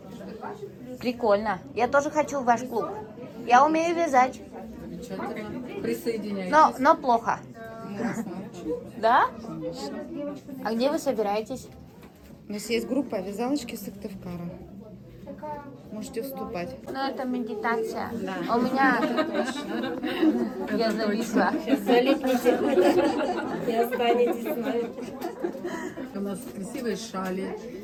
Прикольно. Я тоже хочу в ваш клуб. Я умею вязать. Замечательно. Присоединяйтесь. Но плохо. Да? А где вы собираетесь? У нас есть группа «Вязалочки Сыктывкара». Можете вступать. Ну, это медитация. Да. У меня... Я зависла. И останетесь с нами. У нас красивые шали,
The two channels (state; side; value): identical; both; correlation 1.00